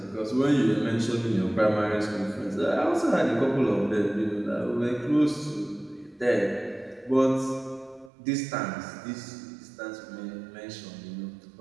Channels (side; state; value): left; drops out; at 8.1 s